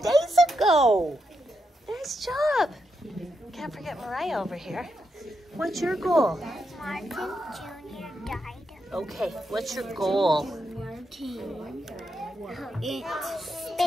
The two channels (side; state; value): both; normal; correlation 0.83